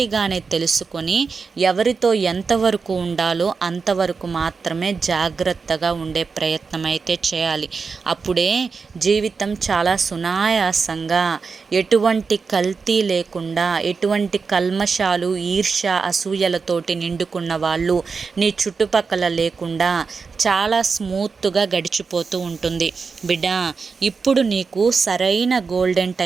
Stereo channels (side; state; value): left; quieter; 5.0 dB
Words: తెలుసుకొని ఎవరితో ఎంతవరకు ఉండాలో అంతవరకు మాత్రమే జాగ్రత్తగా ఉండే ప్రయత్నం అయితే చేయాలి. అప్పుడే జీవితం చాలా సునాయాసంగా, ఎటువంటి కల్తీ లేకుండా, ఎటువంటి కల్మషాలు, ఈర్ష్య, అసూయలతోటి నిండుకున్న వాళ్ళు నీ చుట్టుపక్కల లేకుండా చాలా స్మూత్గా గడిచిపోతూ ఉంటుంది. బిడ్డ, ఇప్పుడు నీకు సరైన గోల్డెన్